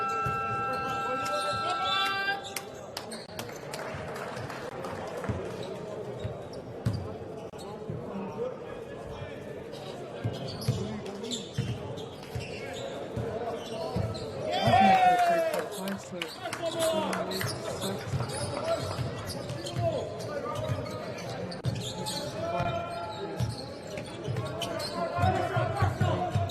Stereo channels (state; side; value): identical; both; correlation 1.00